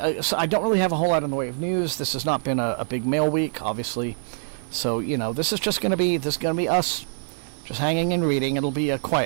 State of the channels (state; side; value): silent; left; 62 dB below the other